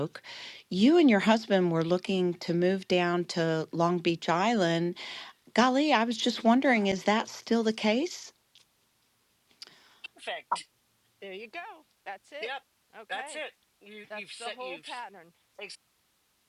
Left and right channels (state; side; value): identical; both; correlation 1.00